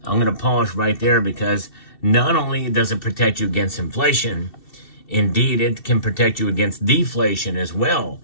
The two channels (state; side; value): late; right; 2.7 ms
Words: I'm going to pause right there because not only does it protect you against inflation, indeed, it can protect you against deflation as well.